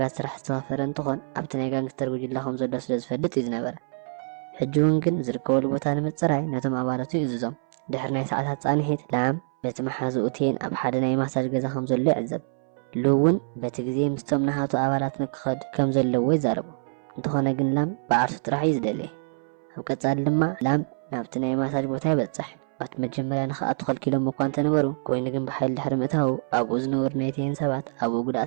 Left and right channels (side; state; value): left; silent; 61 dB below the other